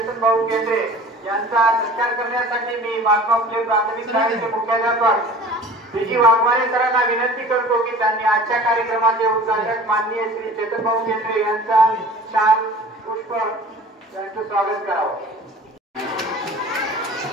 भाऊ केंद्रे यांचा सत्कार करण्यासाठी मी महात्मा फुले प्राथमिक शाळेचे मुख्याध्यापक विजी वाघमारे सरांना विनंती करतो की त्यांनी आजच्या कार्यक्रमाचे उद्घाटक माननीय श्री चेतन भाऊ केंद्रे यांचा शाल पुष्प यांचे स्वागत करावं।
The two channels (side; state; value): both; normal; correlation 0.43